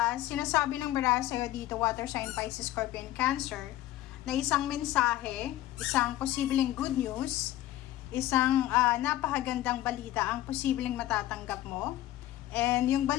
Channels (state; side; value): quieter; right; 14.6 dB